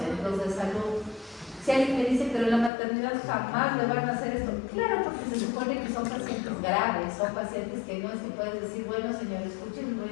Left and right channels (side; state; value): right; drops out; at 2.7 s